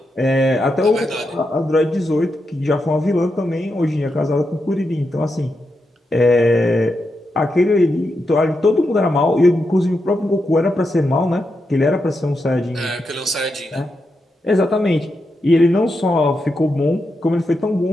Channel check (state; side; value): normal; both; correlation 0.86